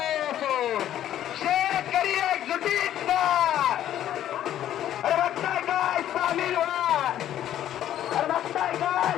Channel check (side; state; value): right; quieter; 11.6 dB